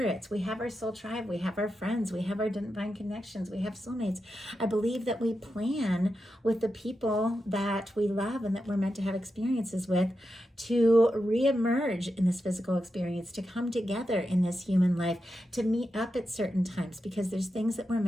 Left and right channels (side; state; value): both; normal; correlation 0.88